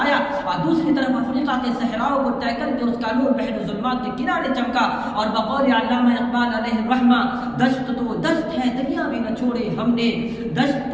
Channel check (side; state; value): both; identical; correlation 1.00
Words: آیا، اور دوسری طرف افریقہ کے صحراؤں کو طے کر کے اس کا نور بحر ظلمات کے کنارے چمکا۔ اور بقول علامہ اقبال علیہ الرحمہ، دشت تو دست ہے دریا بھی نہ چھوڑے ہم نے، دشت